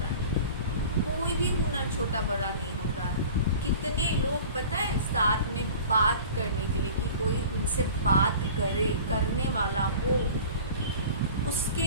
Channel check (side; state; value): both; inverted; correlation -0.41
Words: है। कोई भी हुनर छोटा बड़ा नहीं होता है। कितने लोग पता है साथ में बात करने के लिए, कि कोई उनसे बात करने वाला हो,